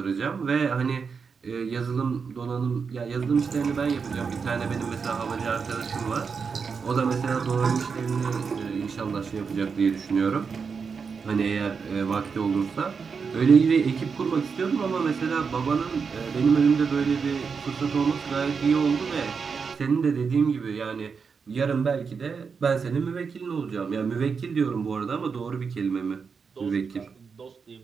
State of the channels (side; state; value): left; quieter; 5.6 dB